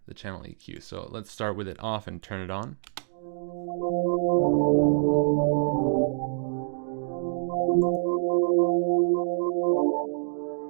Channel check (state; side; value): silent; left; digital silence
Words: the channel EQ. So let's start with it off and turn it on.